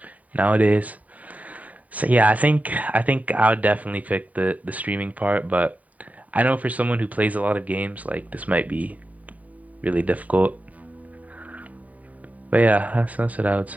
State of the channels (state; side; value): late; left; 0.071 ms